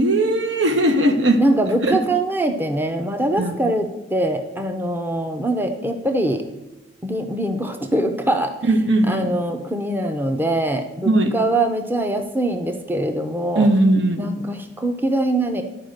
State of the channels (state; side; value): normal; both; correlation 0.65